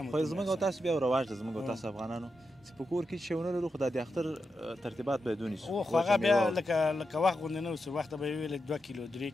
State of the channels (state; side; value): normal; both; correlation 0.87